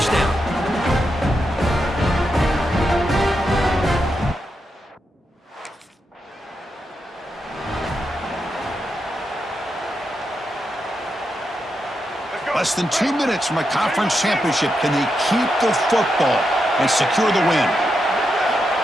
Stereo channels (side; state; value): both; normal; correlation 0.85